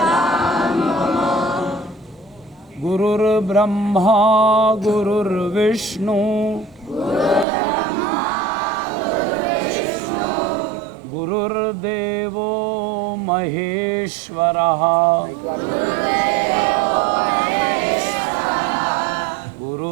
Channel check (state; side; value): drops out; left; at 7.5 s